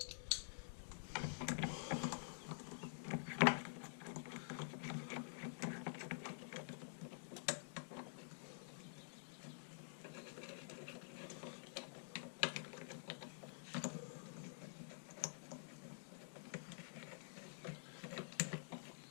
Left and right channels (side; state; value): right; silent; digital silence